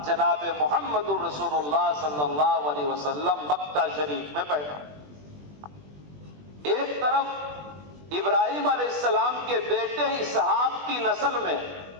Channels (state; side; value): late; left; 20 ms